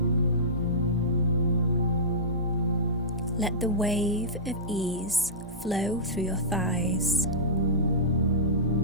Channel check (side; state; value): both; normal; correlation -0.17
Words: Let the wave of ease flow through your thighs,